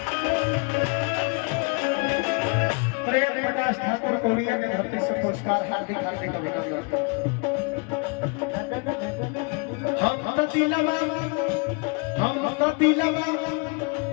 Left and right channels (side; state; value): right; quieter; 32.9 dB